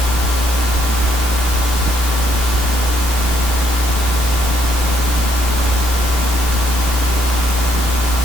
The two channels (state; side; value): normal; both; correlation 0.71